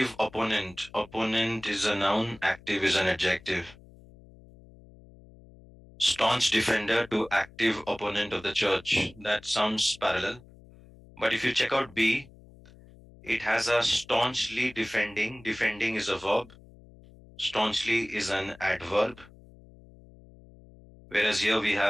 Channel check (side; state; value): left; noise; hum, 23 dB below the sound